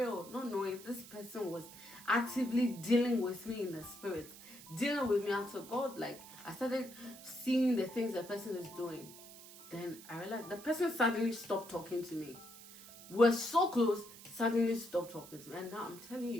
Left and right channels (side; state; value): right; noise; hiss, 17 dB below the sound